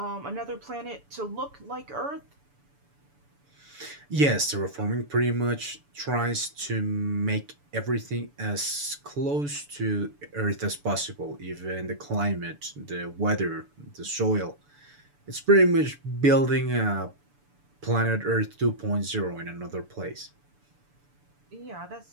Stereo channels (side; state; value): left; late; 6.9 ms